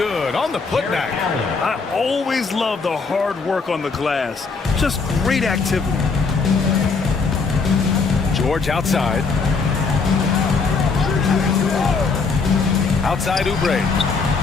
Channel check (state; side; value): quieter; right; 4.6 dB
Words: on the putback. I always love the hard work on the glass. Just great activity. George outside. Outside Oubre.